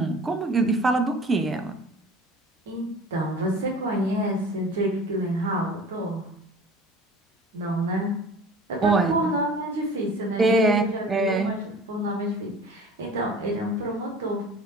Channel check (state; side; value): normal; both; correlation 0.43